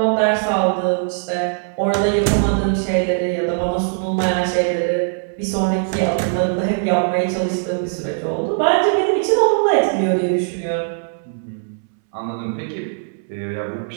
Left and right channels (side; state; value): left; silent; 66 dB below the other